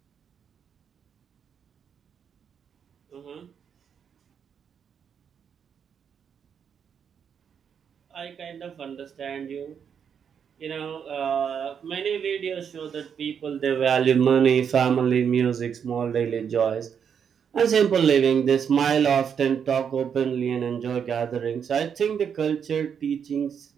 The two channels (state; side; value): quieter; left; 7.5 dB